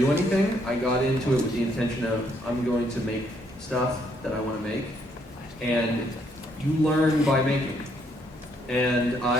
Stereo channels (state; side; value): normal; both; correlation 0.71